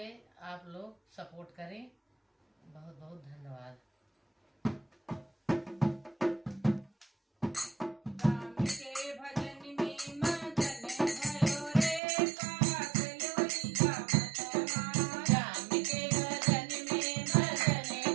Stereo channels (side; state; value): left; drops out; at 12.0 s